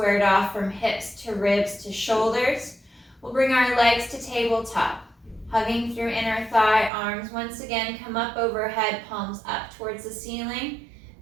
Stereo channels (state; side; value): drops out; left; at 6.9 s